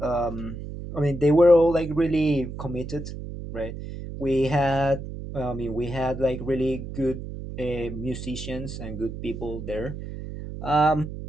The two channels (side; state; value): right; noise; hum, 9 dB below the sound